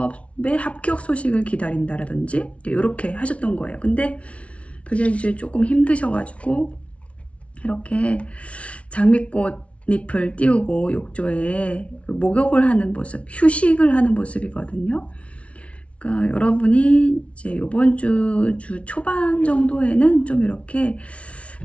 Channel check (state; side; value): late; right; 0.063 ms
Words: 합격 소식을 기다린다라든지 이렇게 하셨던 거예요. 근데 그게 이제 조금 힘드셔가지고 이렇게 장미꽃 잎을 띄우고 욕조에 목욕을 하는 모습, 휴식을 하는 모습이거든요. 그러니까 여러분이 이제 이번 주 초반 정도에는 좀 이렇게